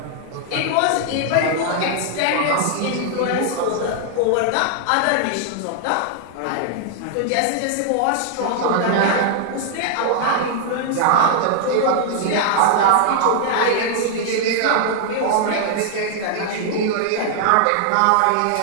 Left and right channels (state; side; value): different; both; correlation 0.00